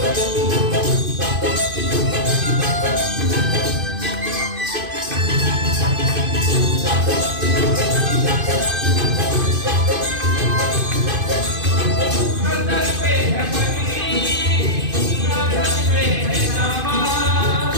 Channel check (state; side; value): late; left; 2.5 ms